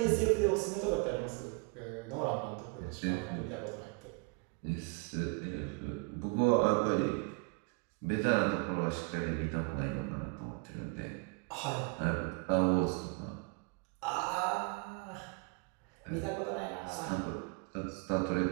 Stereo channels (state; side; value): quieter; left; 30.5 dB